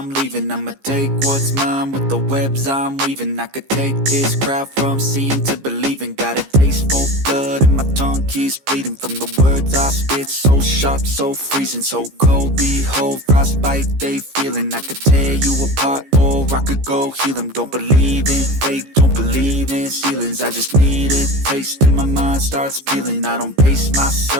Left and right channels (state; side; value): late; left; 15 ms